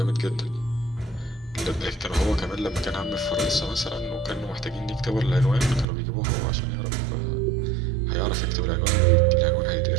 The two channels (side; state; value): left; drops out; at 5.9 s